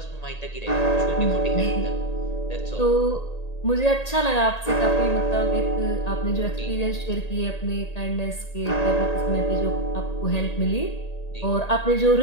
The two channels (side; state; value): right; late; 1.8 ms